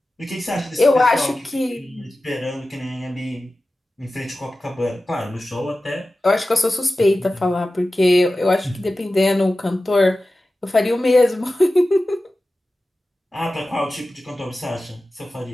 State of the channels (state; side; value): normal; both; correlation 0.95